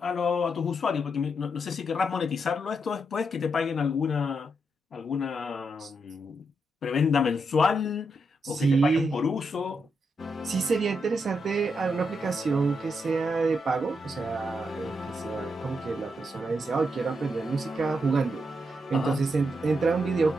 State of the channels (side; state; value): both; normal; correlation 0.82